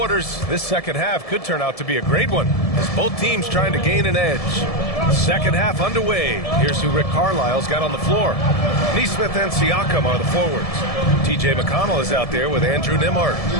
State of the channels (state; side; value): late; right; 1.7 ms